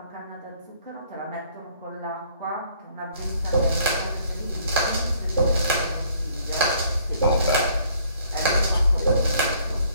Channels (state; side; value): inverted; both; correlation -0.62